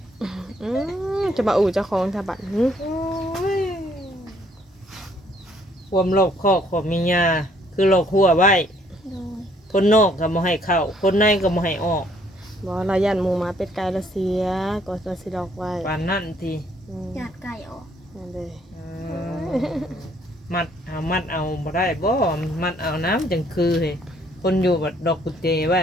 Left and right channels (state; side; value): normal; both; correlation 0.65